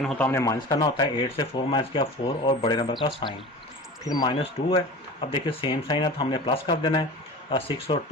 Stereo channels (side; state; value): both; normal; correlation 0.36